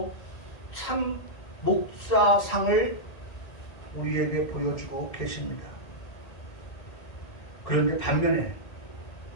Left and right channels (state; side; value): late; right; 1.8 ms